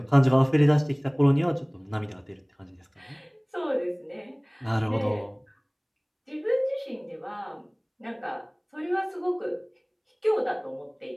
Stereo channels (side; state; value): both; identical; correlation 1.00